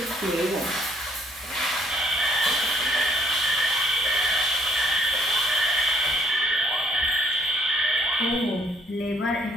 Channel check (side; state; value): both; normal; correlation 0.66